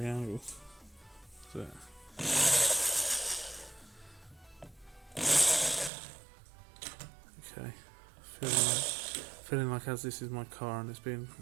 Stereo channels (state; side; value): drops out; left; at 5.9 s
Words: angle. So. Okay. Feeling like as this is my car and it's being